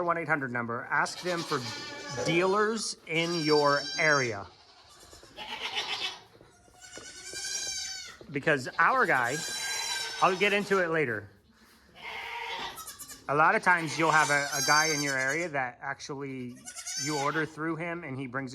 1-800 number, ask them for dealers in your area. Because our guy, I'll get into it later. A lot of times you'll have a guy in your area that actually you order through him and he brings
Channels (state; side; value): identical; both; correlation 1.00